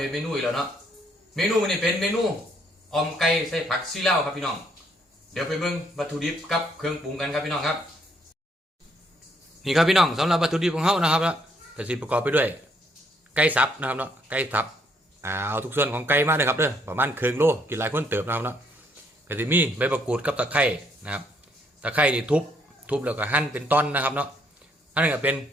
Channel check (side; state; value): both; normal; correlation 0.69